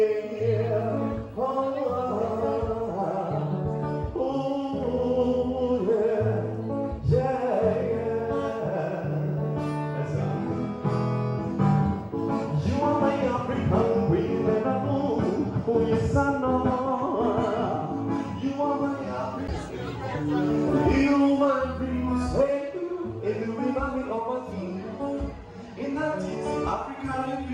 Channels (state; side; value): identical; both; correlation 1.00